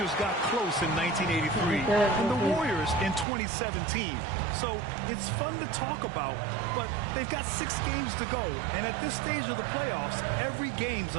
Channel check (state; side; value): drops out; left; at 3.2 s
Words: got close in 1983 and the Warriors in 2017. So it's fun to talk about, but they've got 6 games to go. And at this stage of the playoffs, every game's